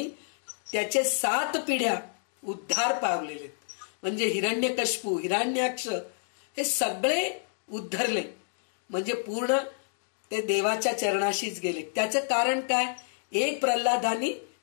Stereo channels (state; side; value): silent; right; digital silence